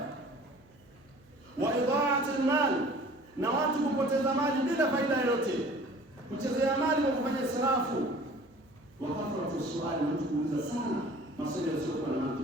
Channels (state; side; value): noise; right; hum, 29 dB below the sound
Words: Wa idha'at al-mal, na watu kupoteza mali bila faida yoyote, kuchezea mali kwa kufanya israfu. Wa kathratu su'ali, mtu kuuliza sana maswali yasiyokuwa na